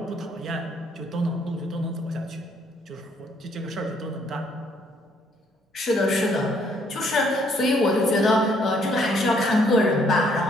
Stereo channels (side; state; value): both; normal; correlation 0.67